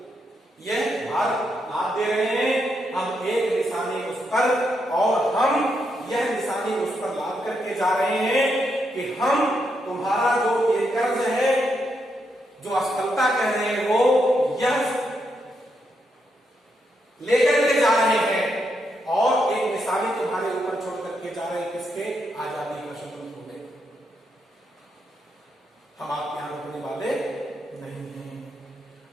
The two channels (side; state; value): both; normal; correlation 0.81